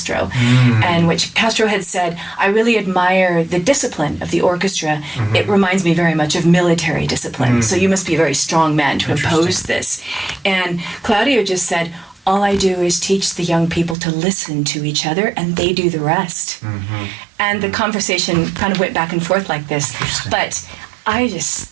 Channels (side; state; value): left; drops out; at 14.0 s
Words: and which Castro had said, I really admire the discipline of the orchestra. It reminds me very much of military discipline, so you must be a very strong man to impose this. And Claudio just said, all I do is teach the young people to listen to each other, and they do the rest. And the conversation kind of went back and forth like this. But I